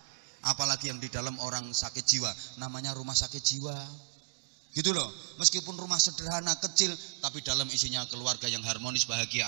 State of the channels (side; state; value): left; quieter; 34.9 dB